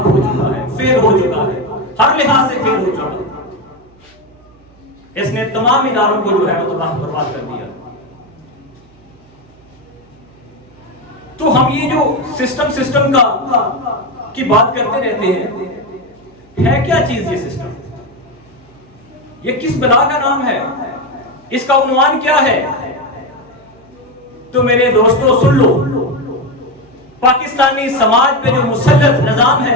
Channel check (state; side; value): noise; right; hum, 29 dB below the sound